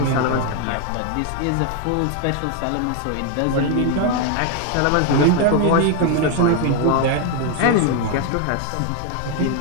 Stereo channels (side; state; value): both; different; correlation 0.01